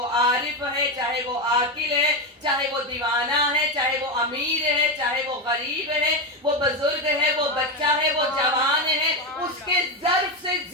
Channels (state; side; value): normal; both; correlation 0.12